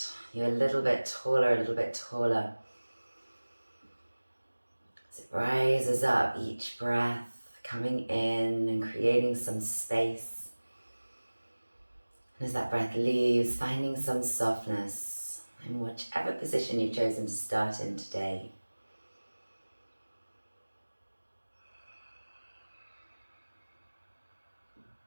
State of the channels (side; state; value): both; inverted; correlation -1.00